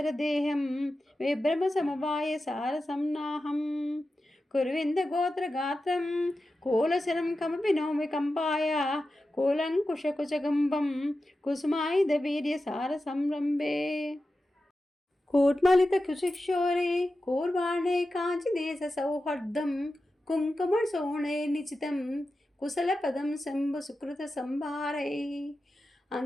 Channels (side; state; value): both; normal; correlation 0.92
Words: विभ्रमसमवायसारसं नाहं कुर्विन्दगोत्रगात्रं कूलशरं कमपि नौमि कम्पाय कूलङ्कुशकुचगम्बं कुसुमायुधवीर्यसारसंरम्भे कूट्मलितकुशिक्षोरे कूर्वाणे काञ्चिदेशसौहार्दं कुङ्कुमसोणे निचितं कुशलपदं शम्भुसुकृतसंभारैः